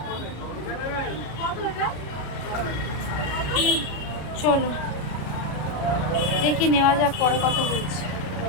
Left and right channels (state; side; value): late; right; 33 ms